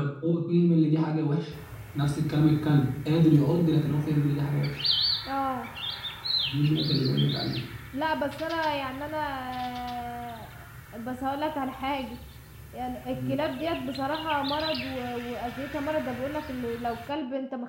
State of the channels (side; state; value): both; identical; correlation 1.00